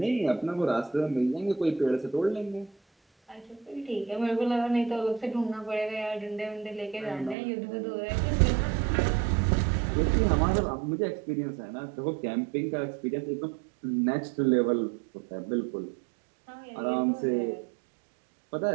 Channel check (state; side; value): drops out; left; at 7.4 s